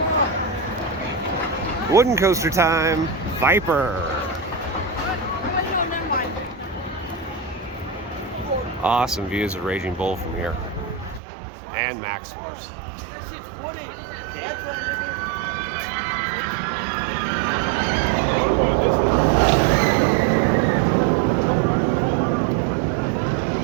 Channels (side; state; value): left; drops out; at 11.2 s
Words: Wooden coaster time, Viper. Awesome views of Raging Bull from here. And Max Force.